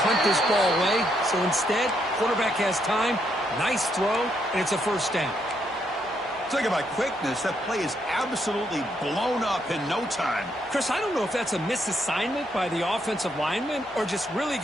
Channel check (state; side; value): normal; both; correlation 0.76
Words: punt this ball away. So instead, quarterback has time, nice throw, and it's a first down. Talking about quickness, that play is absolutely blown up in no time. Chris, I don't know if that's a misassignment by the offensive lineman or just really